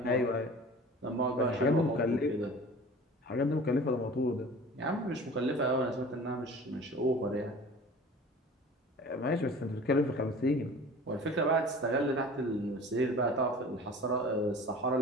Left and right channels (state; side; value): normal; both; correlation 0.42